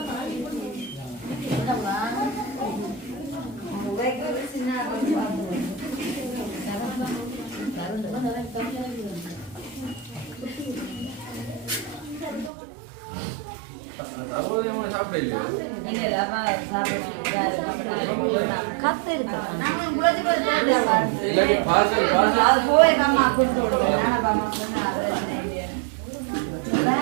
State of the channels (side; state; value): left; drops out; at 12.5 s